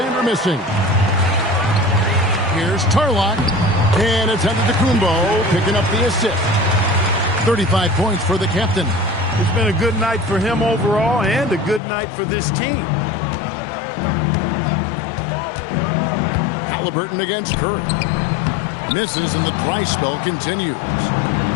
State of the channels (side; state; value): right; drops out; at 11.8 s